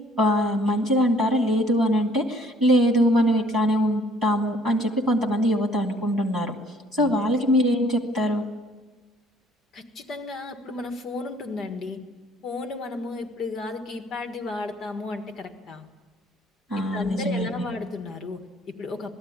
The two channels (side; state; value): both; normal; correlation 0.59